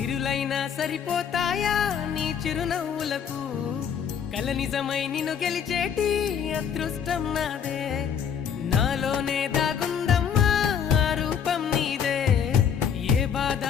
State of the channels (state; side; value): quieter; right; 7.8 dB